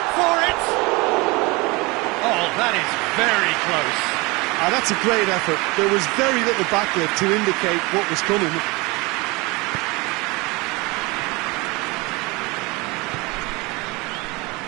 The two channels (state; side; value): quieter; left; 25.1 dB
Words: for it. Oh, that is very close. That's a great effort. There was very little backlift to indicate what was coming.